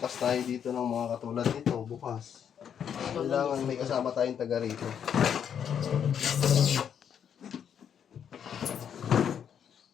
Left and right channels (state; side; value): quieter; right; 8.3 dB